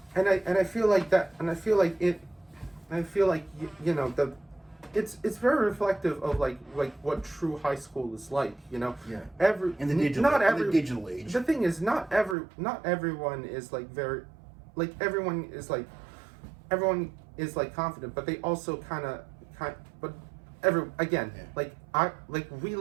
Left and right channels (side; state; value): left; drops out; at 12.4 s